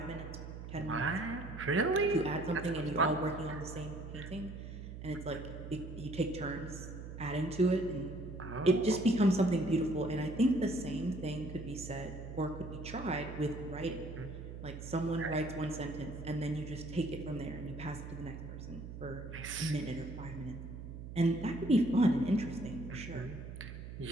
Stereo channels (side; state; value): right; noise; hum, 10 dB below the sound